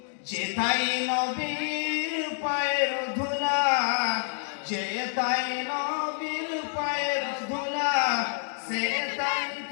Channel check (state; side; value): silent; right; digital silence